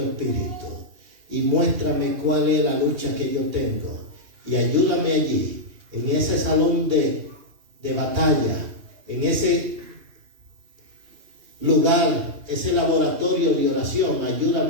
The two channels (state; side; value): late; left; 2.8 ms